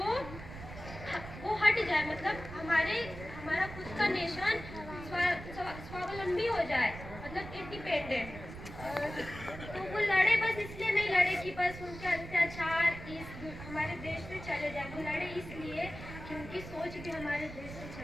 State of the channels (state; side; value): noise; right; rumble, 12 dB below the sound